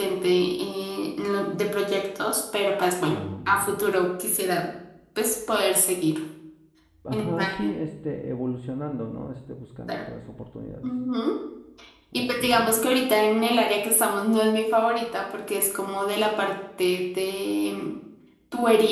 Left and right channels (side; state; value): both; identical; correlation 1.00